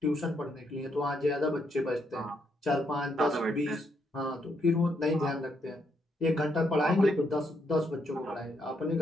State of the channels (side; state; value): both; normal; correlation 0.76